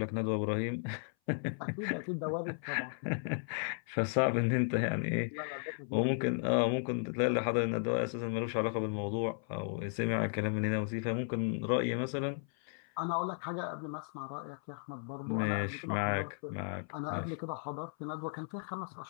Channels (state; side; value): silent; right; 54 dB below the other